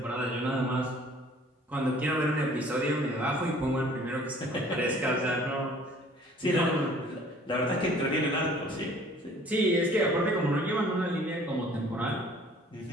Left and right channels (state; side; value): normal; both; correlation 0.53